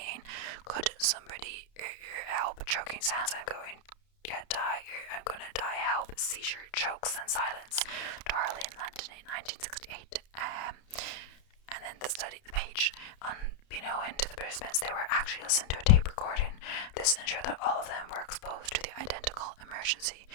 "Could somebody help? Choking sounds. I'm going to die. Help." Seizure, chokes, and silence. Darley in London in 1968. And then the page. Unbeknown to the participants, they were actually listening to a tape recording. This ensured that all of them were exposed to the identical emergency.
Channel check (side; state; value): right; late; 31 ms